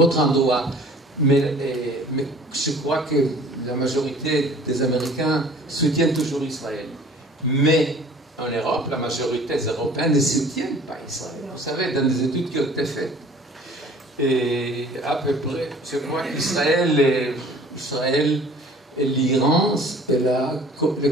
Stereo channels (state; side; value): normal; both; correlation 0.49